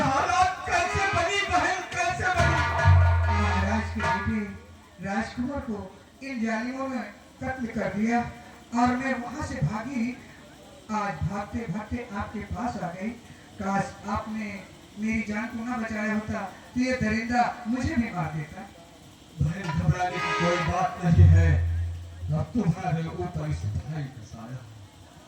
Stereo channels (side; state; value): both; identical; correlation 1.00